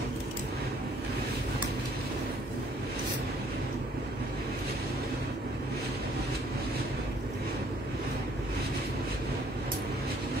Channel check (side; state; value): both; normal; correlation 0.62